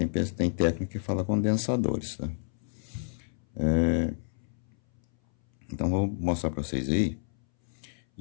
técnica que fala condensadores, tá? Então vou mostrar para vocês aí.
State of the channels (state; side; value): silent; right; 58 dB below the other